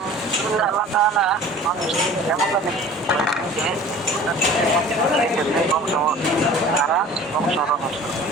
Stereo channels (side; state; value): both; normal; correlation 0.44